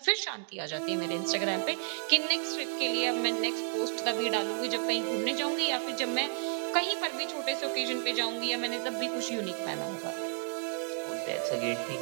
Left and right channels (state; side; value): silent; left; digital silence